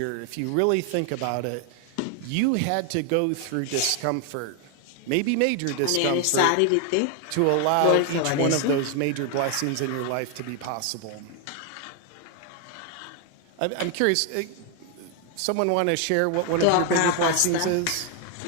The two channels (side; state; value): both; different; correlation 0.00